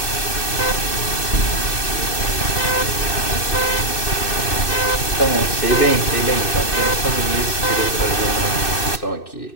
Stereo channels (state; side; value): late; right; 2.6 ms